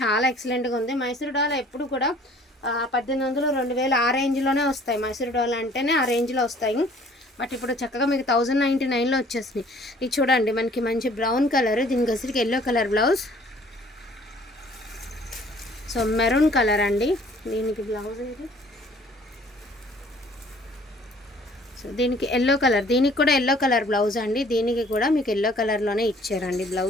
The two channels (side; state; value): both; normal; correlation 0.55